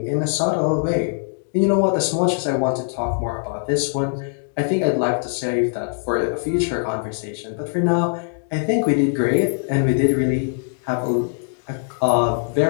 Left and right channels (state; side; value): silent; right; digital silence